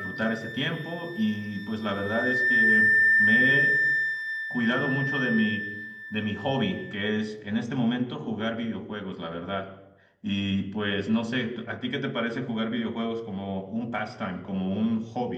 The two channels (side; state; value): both; identical; correlation 1.00